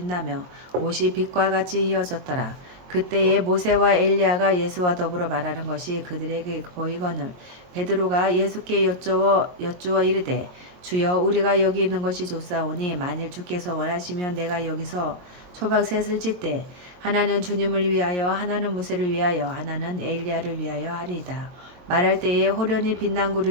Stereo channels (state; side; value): late; left; 22 ms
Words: 옷이 빛과 같이 휘어졌더라. 그때에 모세와 엘리야가 예수와 더불어 말하는 것이 그들에게 보이거늘 베드로가 예수께 여쭈어 이르되 주여 우리가 여기 있는 것이 좋사오니 만일 주께서 원하시면 내가 여기서 초막셋을 짓되 하나는 주님을 위하여 하나는 모세를 위하여 하나는 엘리야를 위하여 하리이다. 말할 때에 호련히 빛난